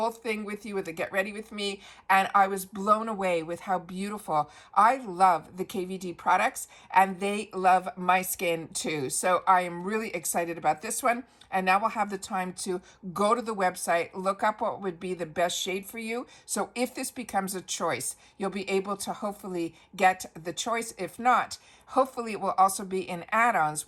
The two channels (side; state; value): both; identical; correlation 1.00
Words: thing with you with the Get Ready With Me, and I was blown away with how beautiful. I love the KVD products, and they love my skin too. So I am really excited about this one. And now we'll have the time to go to the website, look up what would be the best shade for you. So if this becomes a choice, you'll be able to hopefully get the choice. If not, hopefully it will also be in add-ons